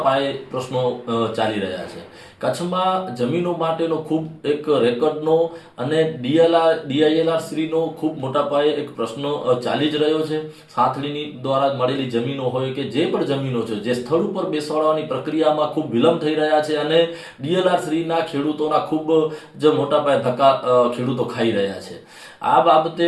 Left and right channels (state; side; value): identical; both; correlation 1.00